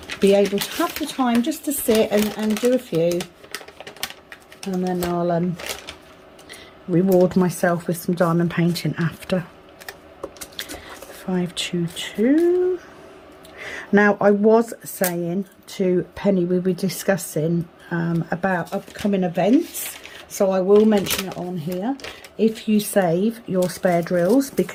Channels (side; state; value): both; identical; correlation 1.00